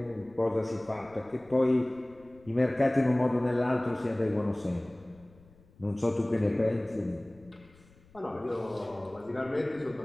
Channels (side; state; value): left; noise; rumble, 27 dB below the sound